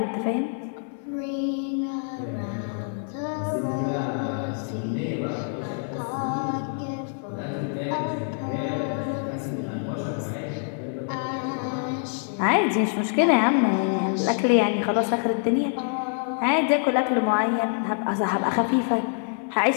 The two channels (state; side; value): silent; right; 61 dB below the other